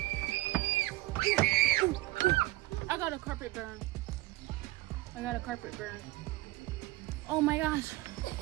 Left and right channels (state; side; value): quieter; left; 19.1 dB